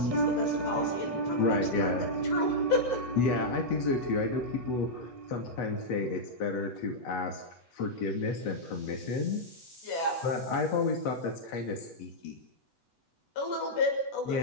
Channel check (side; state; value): right; late; 8.1 ms